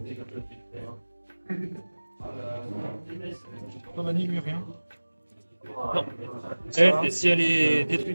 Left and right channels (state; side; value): inverted; both; correlation -1.00